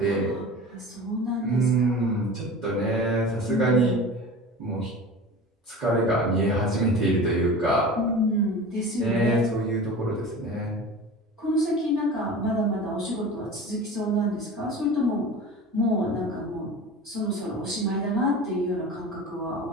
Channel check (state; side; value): normal; both; correlation 0.35